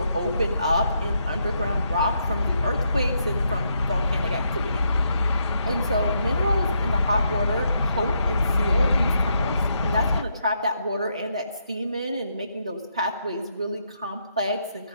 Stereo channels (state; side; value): inverted; both; correlation -0.78